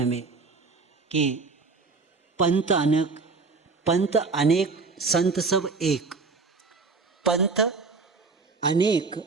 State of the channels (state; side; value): quieter; left; 4.2 dB